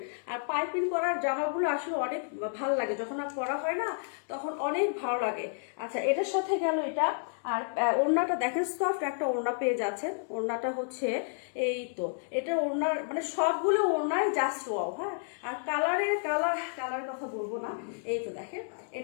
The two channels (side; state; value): right; silent; digital silence